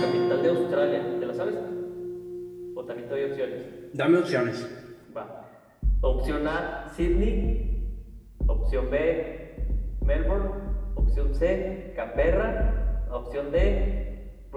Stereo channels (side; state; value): both; identical; correlation 1.00